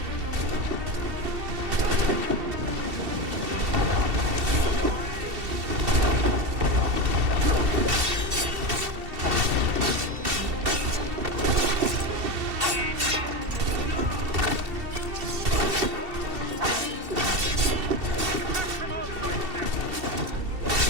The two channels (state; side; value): late; left; 2.7 ms